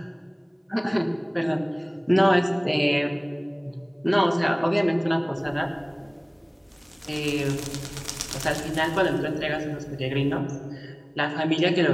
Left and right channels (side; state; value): both; identical; correlation 1.00